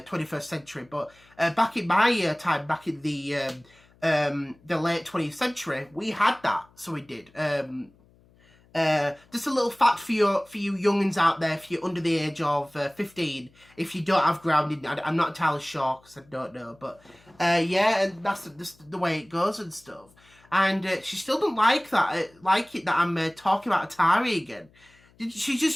century. But back in my time, back in the late 20th century, we had that, so we did. Just a little fact for you youngins out there, if you're under the age of 15, if you don't have grounding, I'm not entirely sure because I don't know, but yeah, and that's just the way it goes and stuff. And she still don't like it that I'm talking about Atari again. She's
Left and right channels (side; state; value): left; noise; hum, 30 dB below the sound